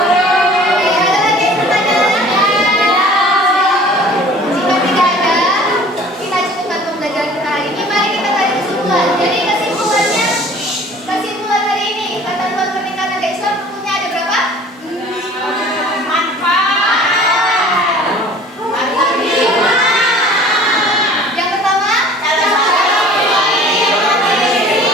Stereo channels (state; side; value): normal; both; correlation 0.48